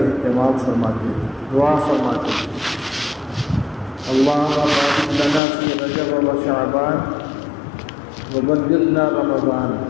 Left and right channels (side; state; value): right; drops out; at 5.4 s